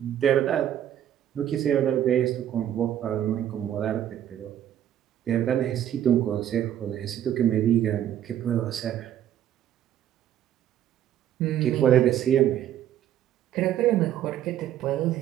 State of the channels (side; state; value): left; quieter; 11.1 dB